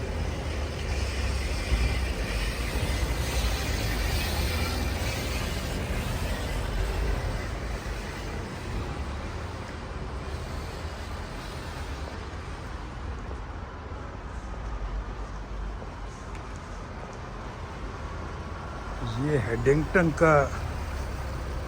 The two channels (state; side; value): identical; both; correlation 1.00